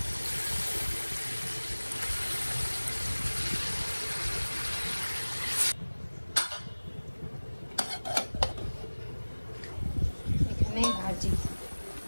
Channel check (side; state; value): both; inverted; correlation -1.00